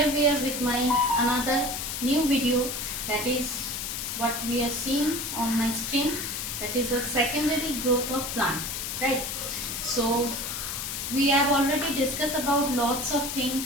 we are with my another new video, that is what we are seeing on my screen, that is the secondary growth of plant, right? So we have already discussed about lots of things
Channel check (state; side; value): noise; left; hiss, 4 dB below the sound